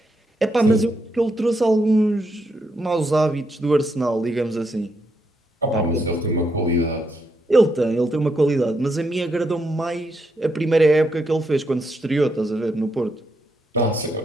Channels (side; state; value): both; normal; correlation 0.80